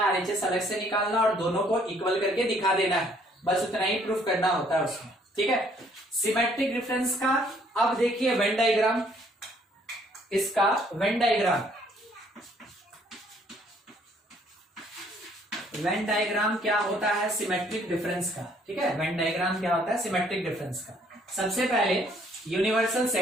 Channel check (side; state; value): both; normal; correlation 0.63